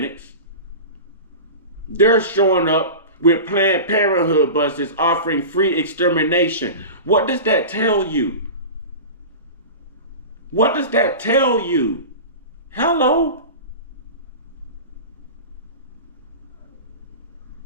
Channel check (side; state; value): both; inverted; correlation -0.31